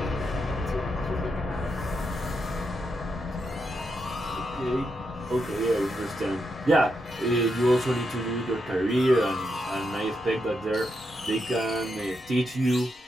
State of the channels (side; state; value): both; normal; correlation 0.83